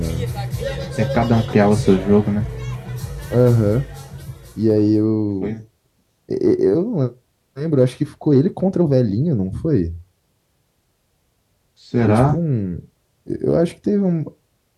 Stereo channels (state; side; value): identical; both; correlation 1.00